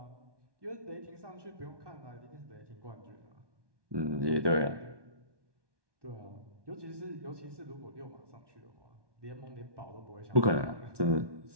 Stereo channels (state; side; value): late; left; 1.2 ms